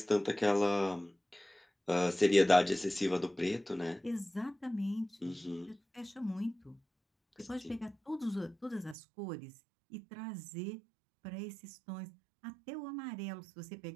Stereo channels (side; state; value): left; drops out; at 9.0 s